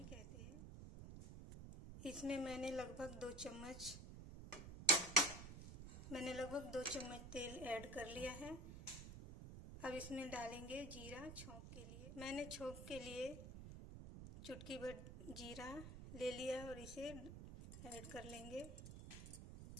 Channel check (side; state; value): right; noise; rumble, 10 dB below the sound